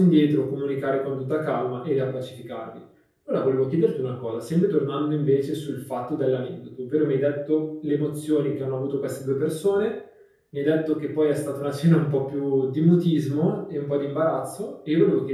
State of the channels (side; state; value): both; identical; correlation 1.00